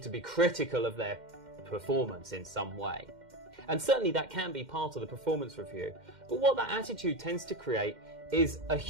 to be critical of their performance in some way. And certainly that can be part of the performance review. But what that attitude tends to create is a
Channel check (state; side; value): late; left; 2.1 ms